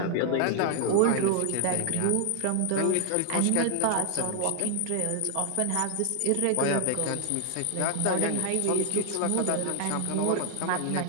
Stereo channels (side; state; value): both; different; correlation 0.00